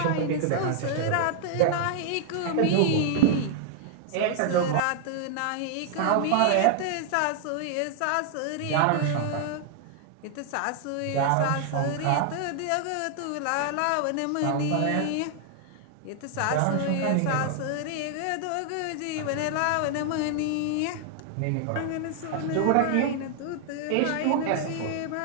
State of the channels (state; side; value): different; both; correlation 0.00